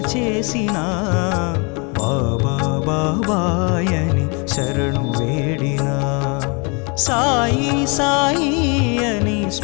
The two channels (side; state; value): right; quieter; 32.4 dB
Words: చేసిన బాబా బాబాయని శరణు వేడినా సాయి సాయి అని